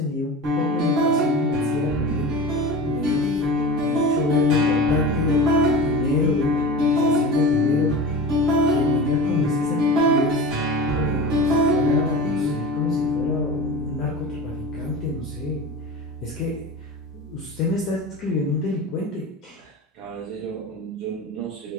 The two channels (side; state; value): both; normal; correlation 0.31